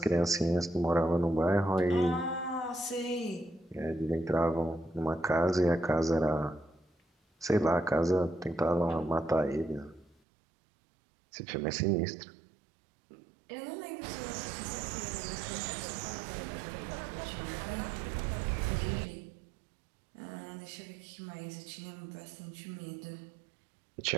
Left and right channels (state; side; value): drops out; left; at 10.2 s